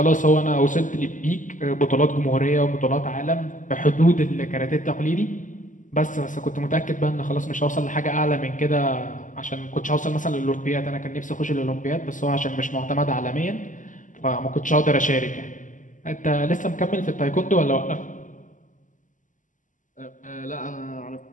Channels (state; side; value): late; right; 0.37 ms